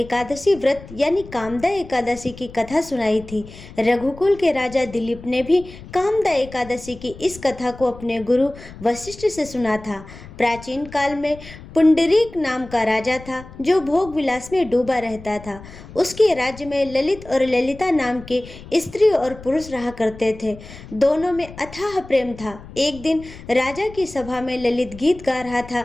व्रत यानी कामदा एकादशी की कथा सुनाई थी। रघुकुल के राजा दिलीप ने भी कामदा एकादशी की इस कथा को अपने गुरु वशिष्ठ से सुना था। प्राचीन काल में पुंडरीक नाम का राजा था, जो भोग विलास में डूबा रहता था। उसके राज्य में ललित और ललिता नाम के स्त्री और पुरुष रहा करते थे। दोनों में अथाह प्रेम था। एक दिन राजा की सभा में ललित गीत गा रहा था,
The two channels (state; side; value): noise; left; rumble, 17 dB below the sound